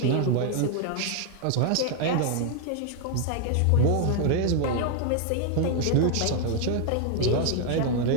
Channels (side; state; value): both; different; correlation 0.01